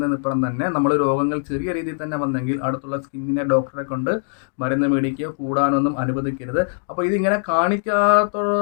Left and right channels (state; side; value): silent; right; digital silence